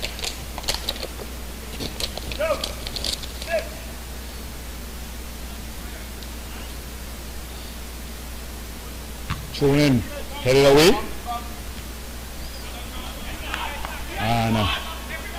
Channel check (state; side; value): identical; both; correlation 1.00